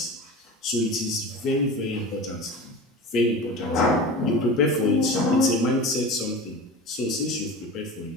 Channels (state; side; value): normal; both; correlation 0.32